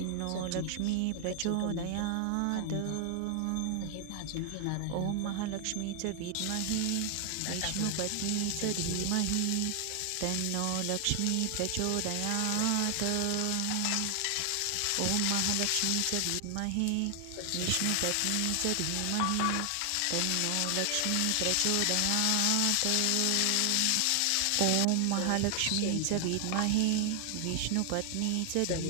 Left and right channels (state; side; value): different; both; correlation 0.00